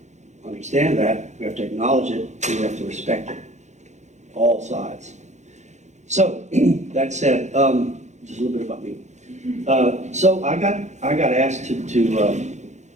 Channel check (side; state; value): left; late; 0.34 ms